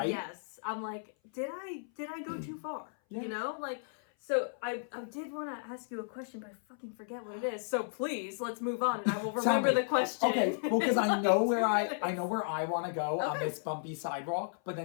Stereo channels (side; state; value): right; silent; 55 dB below the other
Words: Yes. I'm like, did I go too far? Yeah. You know, like. So I did want to ask you a question, but I fucking forget what it is. So please, let's move on, and I will remember the question. Okay, well, because I know where I want to go on Okay. this bumpy sidewalk. But